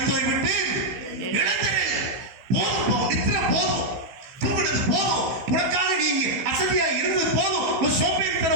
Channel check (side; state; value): left; late; 15 ms